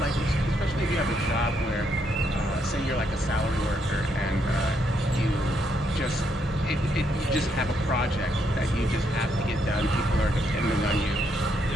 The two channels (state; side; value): normal; both; correlation 0.76